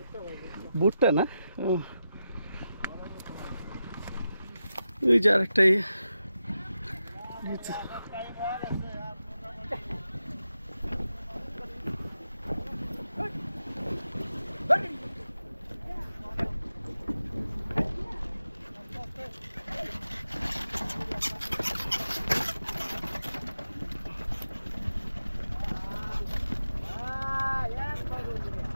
ভুট্টা না? ওই যে আরেকটাই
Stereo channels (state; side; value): inverted; both; correlation -0.89